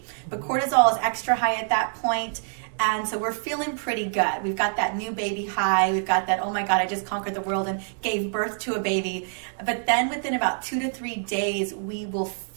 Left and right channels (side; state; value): left; silent; digital silence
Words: But cortisol is extra high at that point. And so we're feeling pretty good. We've got that new baby high. We've got that, oh my God, I just conquered the world and gave birth to a baby. But then within about 2 to 3 days, we will